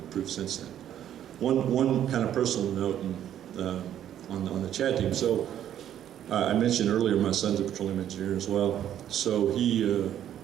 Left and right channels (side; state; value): left; quieter; 10.7 dB